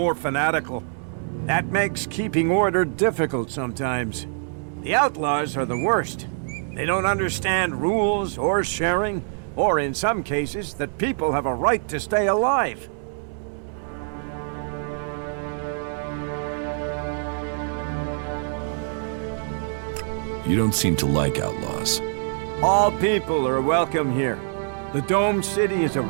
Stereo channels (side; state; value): left; silent; 62 dB below the other